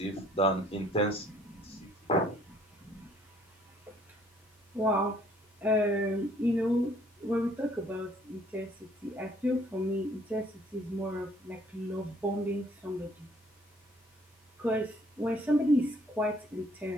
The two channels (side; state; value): both; normal; correlation 0.61